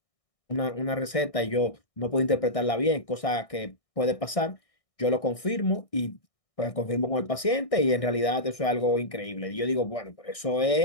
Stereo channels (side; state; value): right; late; 1.6 ms